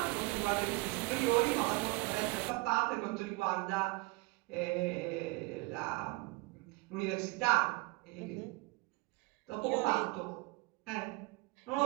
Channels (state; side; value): quieter; left; 24.7 dB